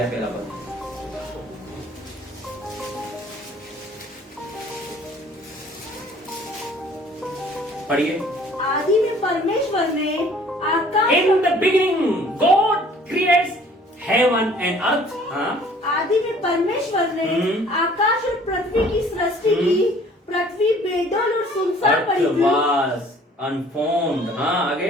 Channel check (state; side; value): normal; both; correlation 0.54